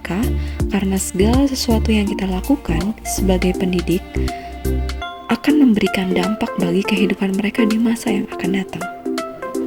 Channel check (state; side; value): identical; both; correlation 1.00